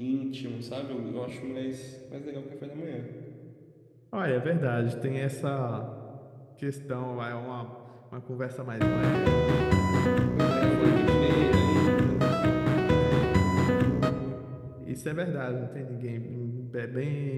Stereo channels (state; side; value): identical; both; correlation 1.00